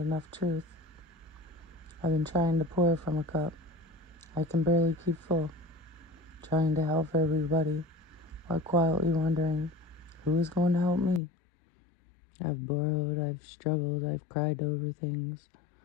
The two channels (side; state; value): right; drops out; at 11.2 s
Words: truth. I've been trying to pour from a cup I can barely keep full, trying to help everybody while quietly wondering who is going to help me. I've borrowed, I've struggled, I've cried over things